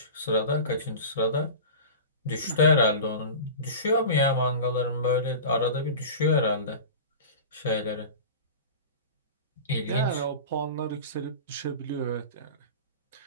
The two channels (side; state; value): both; inverted; correlation -0.33